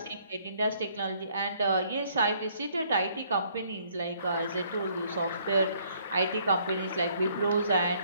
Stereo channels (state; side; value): inverted; both; correlation -0.64